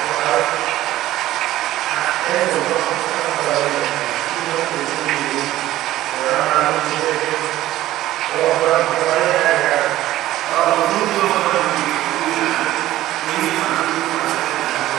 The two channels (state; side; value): quieter; left; 14.8 dB